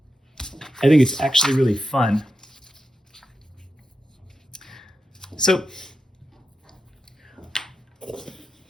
think it's actually really fun. So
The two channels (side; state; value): both; normal; correlation 0.88